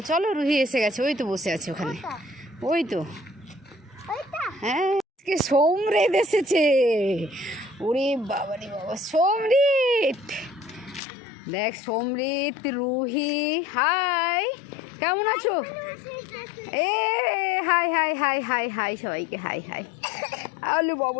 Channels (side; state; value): right; drops out; at 11.0 s